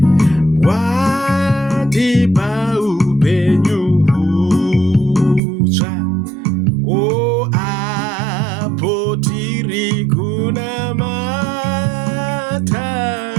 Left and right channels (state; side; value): drops out; left; at 5.4 s